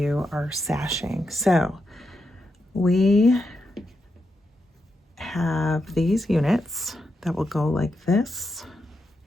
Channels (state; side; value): normal; both; correlation 0.85